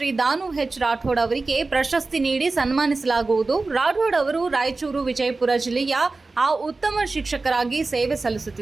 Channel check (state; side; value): quieter; left; 3.6 dB